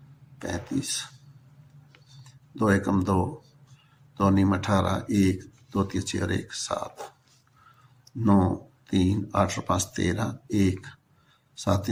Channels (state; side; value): identical; both; correlation 1.00